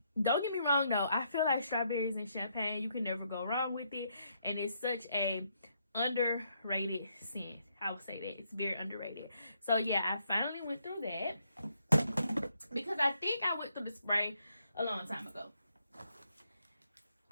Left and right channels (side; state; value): both; inverted; correlation -0.75